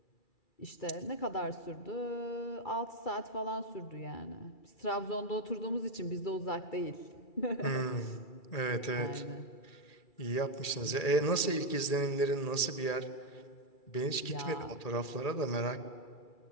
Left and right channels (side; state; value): right; late; 2.3 ms